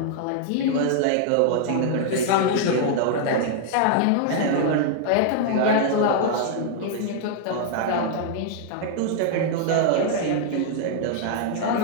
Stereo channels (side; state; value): both; different; correlation -0.01